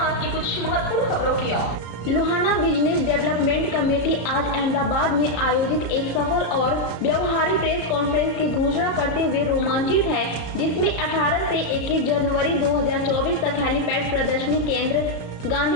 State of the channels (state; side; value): late; right; 33 ms